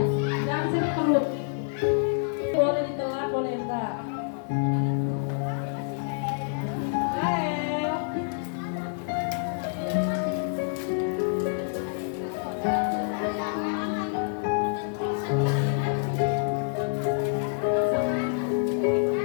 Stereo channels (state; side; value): silent; right; digital silence